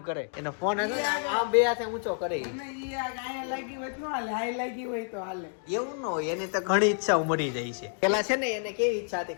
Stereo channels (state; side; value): silent; right; 58 dB below the other